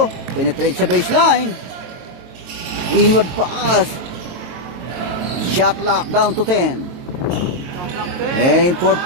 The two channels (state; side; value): late; left; 23 ms